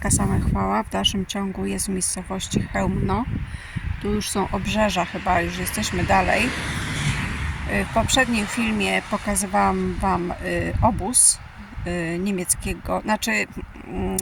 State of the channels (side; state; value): both; identical; correlation 1.00